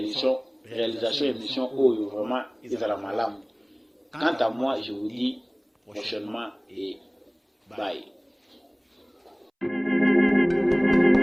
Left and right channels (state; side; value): identical; both; correlation 1.00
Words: émission Oyo, vraiment, ils ont la malam. Quant à moi, je vous dis prochainement et bye.